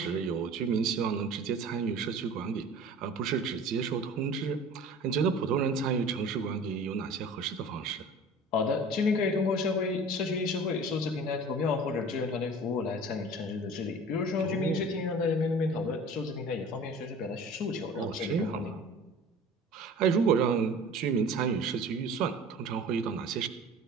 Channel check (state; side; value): normal; both; correlation 0.42